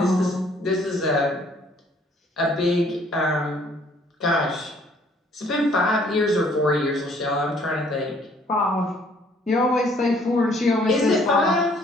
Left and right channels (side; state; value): both; normal; correlation 0.61